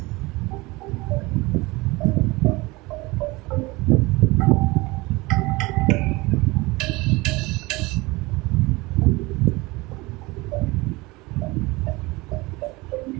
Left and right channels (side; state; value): left; quieter; 22.8 dB